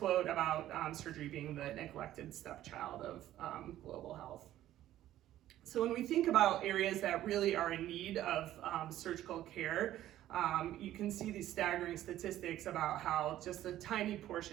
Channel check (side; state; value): left; quieter; 13.3 dB